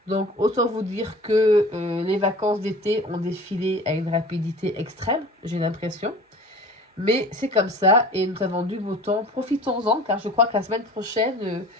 Donc, autant vous dire que les vacances d'été ont défilé à une rapidité extrême, j'ai l'impression. Mais c'est comme ça, et nous avons du beau temps. Profitons-en, car je crois que la semaine prochaine,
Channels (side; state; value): both; normal; correlation 0.42